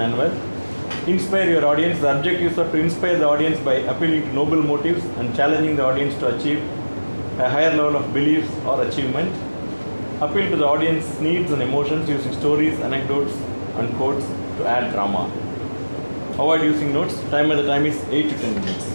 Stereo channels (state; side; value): inverted; both; correlation -1.00